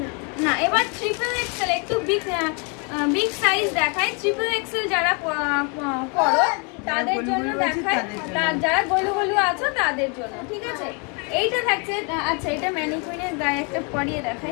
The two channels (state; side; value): quieter; right; 34.9 dB